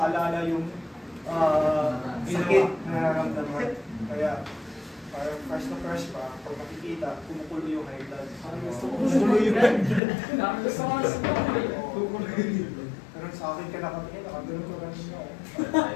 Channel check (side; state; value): right; drops out; at 10.0 s